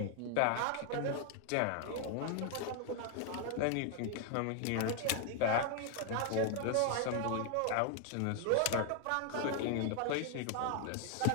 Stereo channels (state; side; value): different; both; correlation 0.00